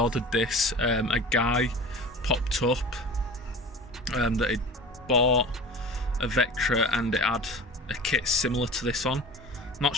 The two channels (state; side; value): normal; both; correlation 0.38